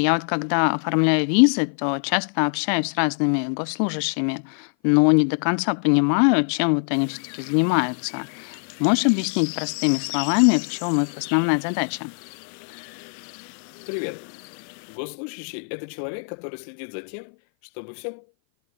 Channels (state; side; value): silent; right; 58 dB below the other